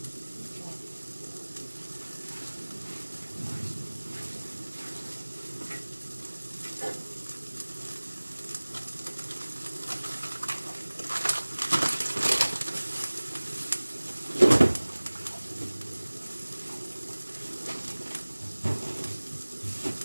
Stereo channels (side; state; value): both; inverted; correlation -1.00